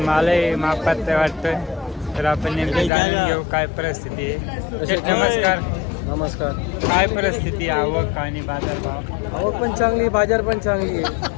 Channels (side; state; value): right; drops out; at 2.9 s